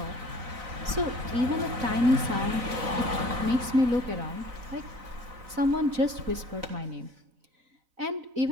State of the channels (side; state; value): left; late; 4.0 ms